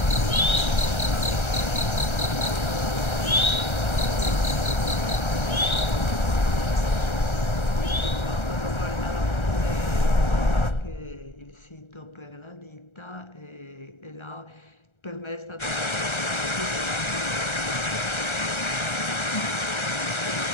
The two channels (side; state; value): right; late; 1.3 ms